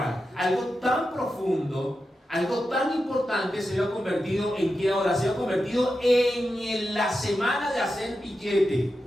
algo tan profundo, algo tan importante se había convertido en ¿qué ahora? Se había convertido en la semana de hacer billete.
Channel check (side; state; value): both; normal; correlation 0.90